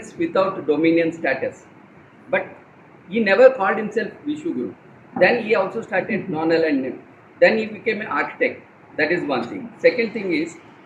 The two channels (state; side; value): identical; both; correlation 1.00